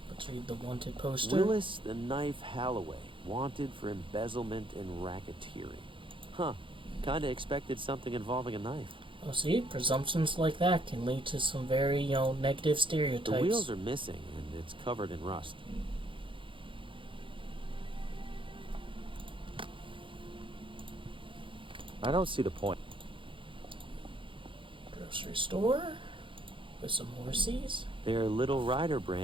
let's read the wanted poster. Willis the Knife Halloway, wanted for embezzlement and racketeering. Huh. Kinda expected something involving a knife. Oh, see? Presumptions like that can lead to some very, negative stereotypes. The wheels are missing, and it's covered in rust. I don't see the point. Grocery store? With some horsies? They're Little Rider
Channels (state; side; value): late; left; 0.25 ms